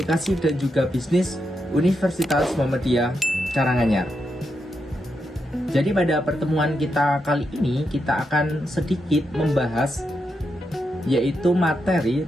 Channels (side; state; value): both; normal; correlation 0.84